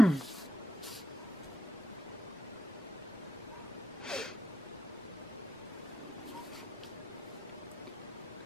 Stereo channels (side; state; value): both; normal; correlation 0.82